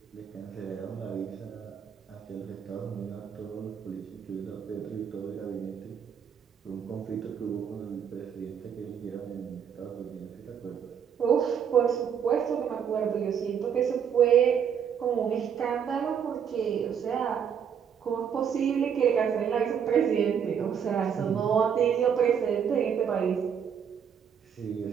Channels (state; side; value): quieter; left; 7.8 dB